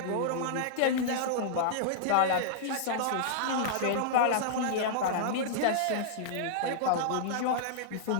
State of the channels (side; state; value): both; different; correlation -0.02